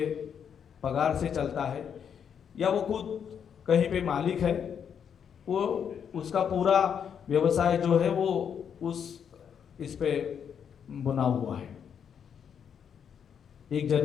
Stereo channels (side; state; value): right; quieter; 7.8 dB